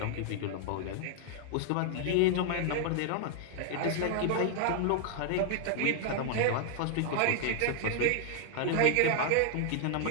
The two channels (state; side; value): different; both; correlation 0.00